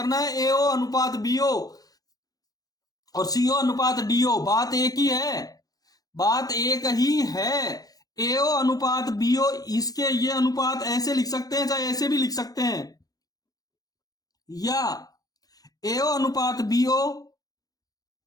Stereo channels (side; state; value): right; late; 0.18 ms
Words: है AO अनुपात BO और CO अनुपात DO। बात एक ही है, बात एक ही है। AO अनुपात BO, इसके ये अनुपात ऐसे लिख सकते हैं, चाहे ऐसे भी लिख सकते हैं, या AO अनुपात BO